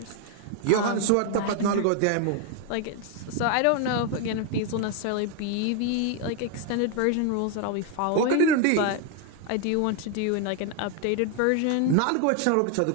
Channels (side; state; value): both; different; correlation 0.01